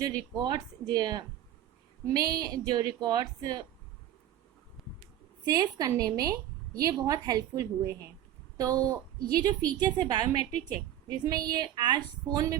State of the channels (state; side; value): quieter; left; 11.8 dB